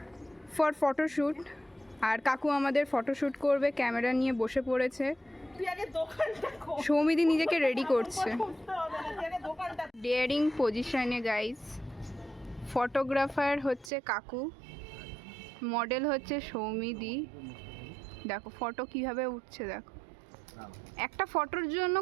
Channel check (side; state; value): left; drops out; at 13.9 s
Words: ফর ফটোশ্যুট, আর কাকু আমাদের ফটোশ্যুট করবে, ক্যামেরা নিয়ে বসে পড়েছে। সৌমিদি নিজেকে রেডি করছে ডেয়ারিং পজিশনে গাইস। ফটোগ্রাফার হচ্ছে কাকু, মডেল হচ্ছে সৌমিদি। দেখো ফটো কিভাবে উঠছে, দেখো একটা ফটোর জন্য